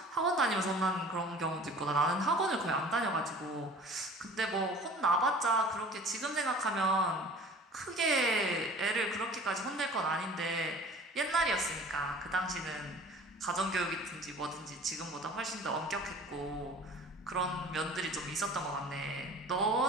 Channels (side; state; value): both; normal; correlation 0.45